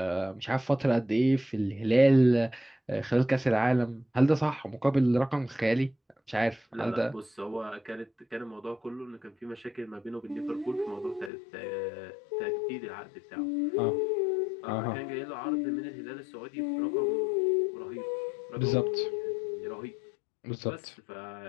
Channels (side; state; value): right; drops out; at 11.3 s